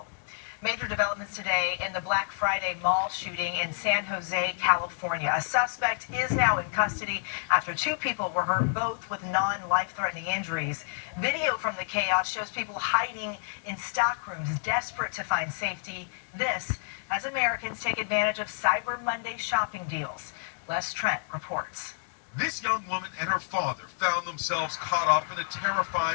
Major developments today in the Black Friday mall shooting in San Jose, California. A suspect is now in custody after 2 people were hurt, both with non-life-threatening injuries. Video from the chaos shows people hiding in stock rooms, desperate to find safety. This as Americans take advantage of Cyber Monday shopping deals. Les Trent reports. This young woman and her father found themselves caught up in a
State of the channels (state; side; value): silent; right; digital silence